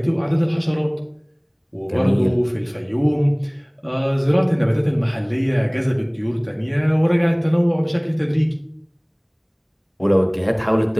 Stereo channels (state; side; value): identical; both; correlation 1.00